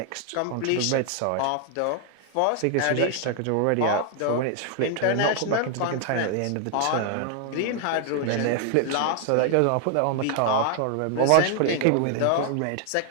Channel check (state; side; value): different; both; correlation 0.00